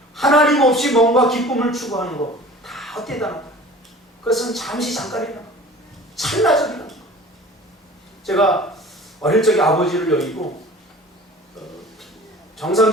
하나님 없이 뭔가 기쁨을 추구하는 것 다 헛되다는 거예요. 그것은 잠시 잠깐이다. 찰나적이다. 제가 어릴 적에 아버지를 여의고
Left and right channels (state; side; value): normal; both; correlation 0.44